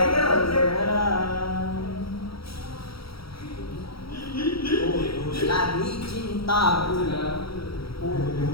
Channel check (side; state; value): right; late; 0.75 ms